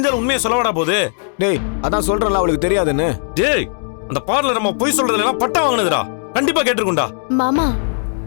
உண்மையை சொல்லவாடா போகுது? டேய், அதான் சொல்றேன்ல அவளுக்கு தெரியாதுன்னு. டேய், அந்த பார்லர் நம்ம போய் சொல்றதுல எல்லாம் பட்டம் வாங்கினதுடா. கண்டிப்பா கேட்டிருக்கும்டா. மாமா,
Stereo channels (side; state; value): right; silent; digital silence